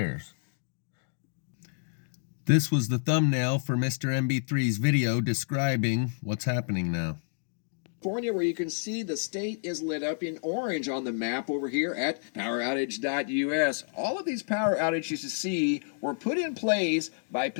This was the thumbnail for Mr. MB3's video describing what's happening now. California, where you can see the state is lit up in orange on the map over here at poweroutage.us. All of these power outages you see were put in place by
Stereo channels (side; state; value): right; silent; digital silence